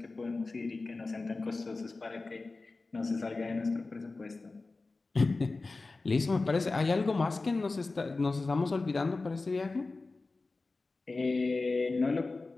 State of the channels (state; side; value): quieter; right; 3.6 dB